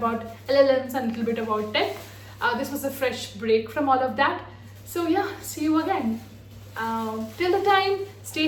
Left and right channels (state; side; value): identical; both; correlation 1.00